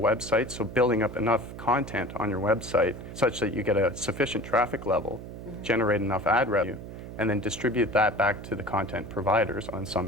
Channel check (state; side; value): noise; right; hum, 11 dB below the sound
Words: so building up enough content on your website such that you get a sufficient traffic level, generate enough ad revenue, and then distribute that back to the content providers on